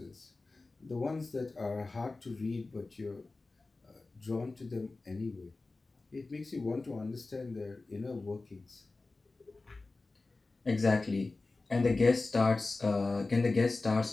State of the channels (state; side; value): quieter; right; 3.5 dB